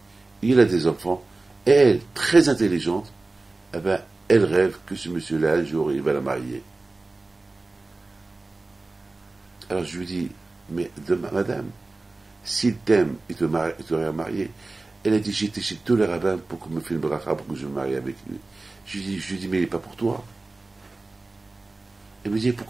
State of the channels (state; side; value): quieter; left; 3.2 dB